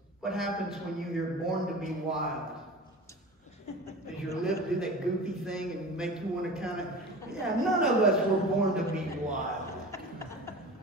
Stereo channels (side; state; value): both; normal; correlation 0.35